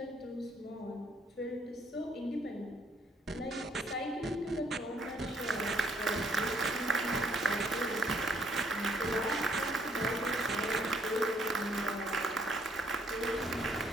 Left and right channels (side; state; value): both; normal; correlation 0.67